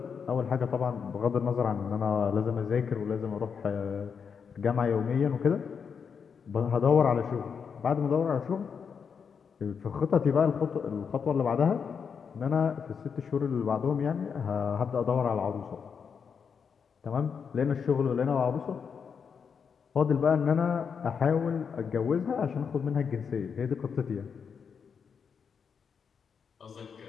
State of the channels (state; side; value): quieter; right; 6.5 dB